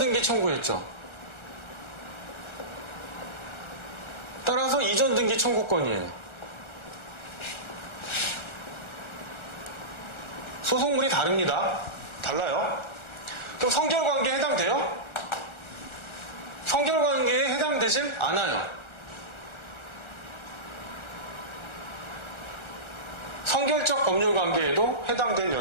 청구했죠. 따라서 이전등기 청구권이에요. 소송물이 다릅니다. 달라요. 그럼 성결관계에 해당돼요? 성결관계에 해당되질 않아요. 성결적 법률관계에도 해당될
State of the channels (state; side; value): late; right; 1.3 ms